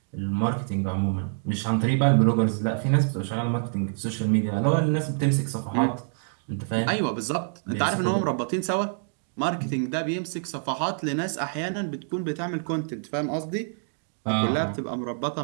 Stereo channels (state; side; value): silent; left; digital silence